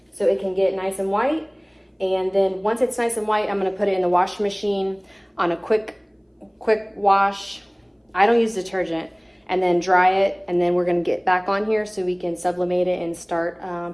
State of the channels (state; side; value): identical; both; correlation 1.00